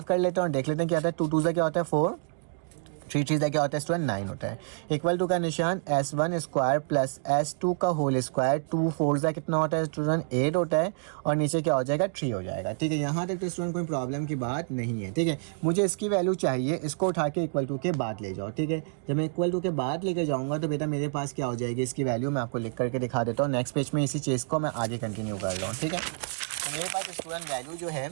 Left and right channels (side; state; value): left; silent; digital silence